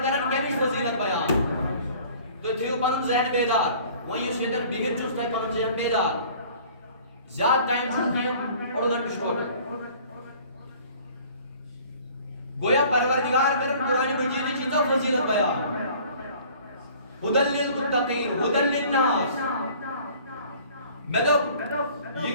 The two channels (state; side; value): inverted; both; correlation -0.50